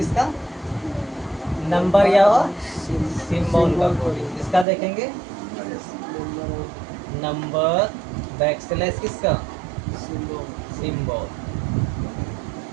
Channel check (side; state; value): left; drops out; at 4.7 s